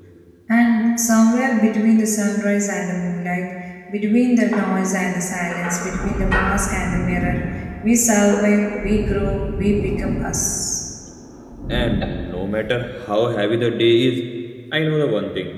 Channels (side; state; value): both; identical; correlation 1.00